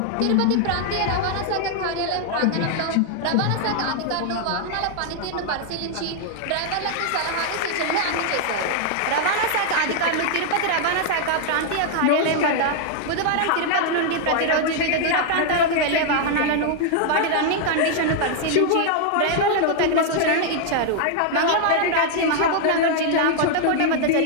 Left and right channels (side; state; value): both; different; correlation 0.00